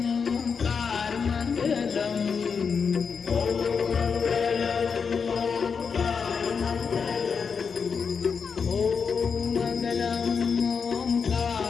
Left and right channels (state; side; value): quieter; right; 5.9 dB